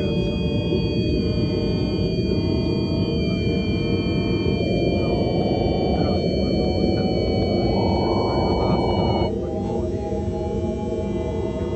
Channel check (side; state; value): both; identical; correlation 1.00